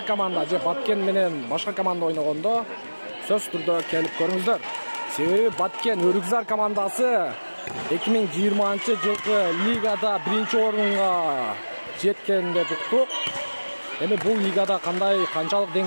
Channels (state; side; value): inverted; both; correlation -1.00